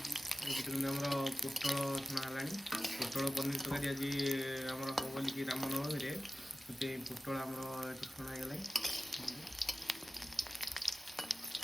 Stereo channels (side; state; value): both; normal; correlation 0.96